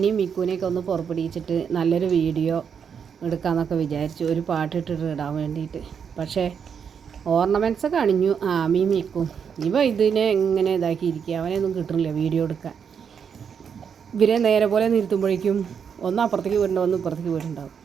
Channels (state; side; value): quieter; left; 7.1 dB